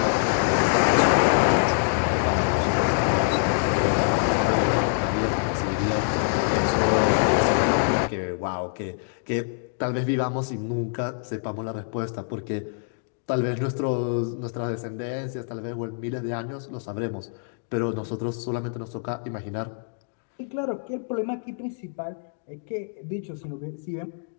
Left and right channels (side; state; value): right; silent; digital silence